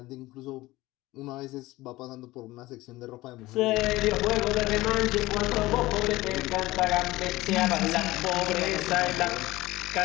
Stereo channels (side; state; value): right; quieter; 18.7 dB